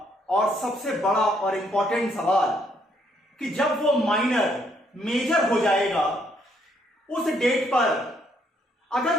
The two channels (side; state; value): both; normal; correlation 0.71